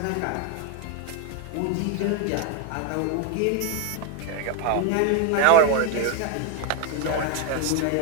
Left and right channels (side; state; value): both; different; correlation 0.01